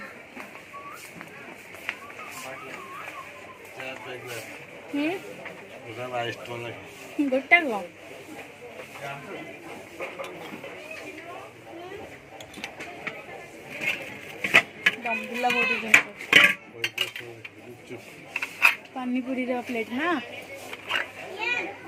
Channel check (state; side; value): identical; both; correlation 1.00